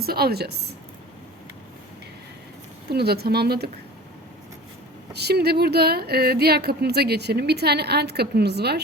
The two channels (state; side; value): normal; both; correlation 0.38